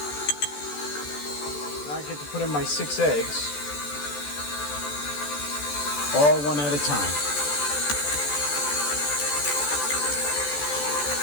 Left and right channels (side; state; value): right; late; 14 ms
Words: Now I get to put in my 6 eggs, all one at a time.